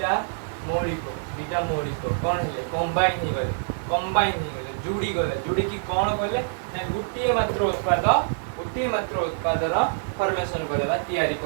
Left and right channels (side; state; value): left; silent; digital silence